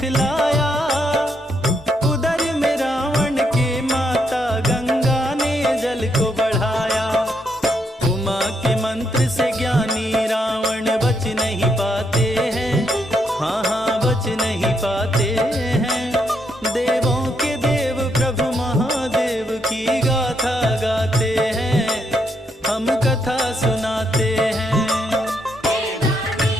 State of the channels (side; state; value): both; normal; correlation 0.77